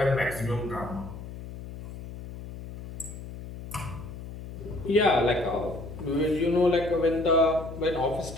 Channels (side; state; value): left; noise; hum, 12 dB below the sound